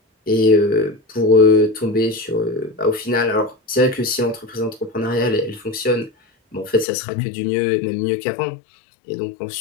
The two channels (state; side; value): drops out; right; at 6.9 s